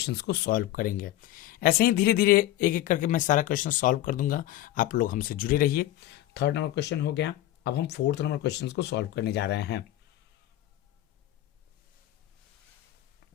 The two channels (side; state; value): right; quieter; 14.4 dB